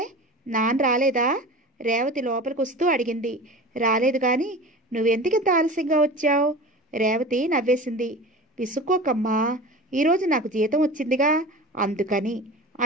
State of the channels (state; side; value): normal; both; correlation 0.35